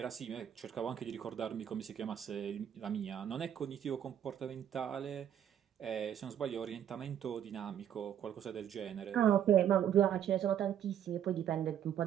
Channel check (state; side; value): quieter; left; 9.8 dB